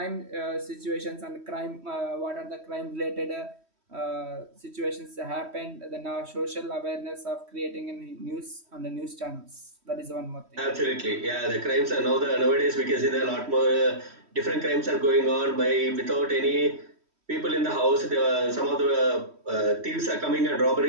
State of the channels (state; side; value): late; left; 3.1 ms